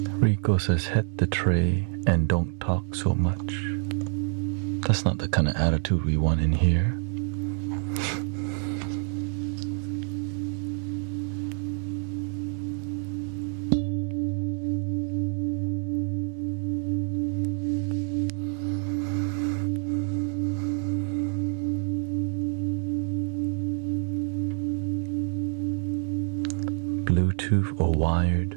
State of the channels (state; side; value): silent; left; digital silence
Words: Rico says, hit the tray and don't talk so much. That's not the kind of attitude we want in here. Bluetooth or wired?